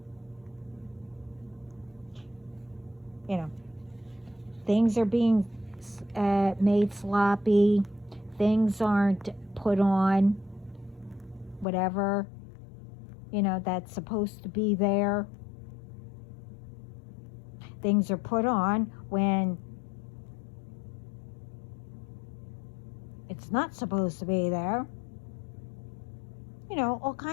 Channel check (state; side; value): drops out; right; at 11.7 s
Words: You know, things are being made sloppy. Things aren't put on whatever, that's supposed to be there. Things are put on when it's not supposed to be there. All